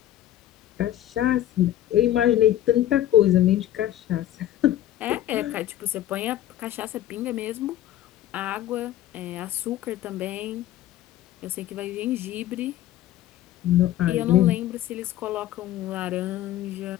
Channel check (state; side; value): quieter; right; 12.9 dB